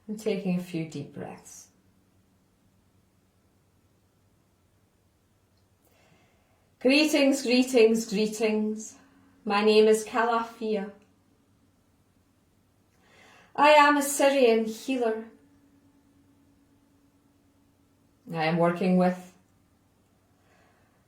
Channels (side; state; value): both; identical; correlation 1.00